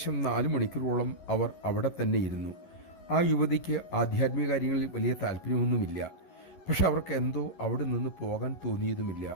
4 മണിക്കൂറോളം അവർ അവിടെ തന്നെ ഇരുന്നു. ആ യുവതിക്ക് ആധ്യാത്മിക കാര്യങ്ങളിൽ വലിയ താല്പര്യമൊന്നുമില്ല. പക്ഷെ അവർക്ക് എന്തോ അവിടെ നിന്ന് പോകാൻ തോന്നിയതുമില്ല.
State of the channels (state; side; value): late; right; 11 ms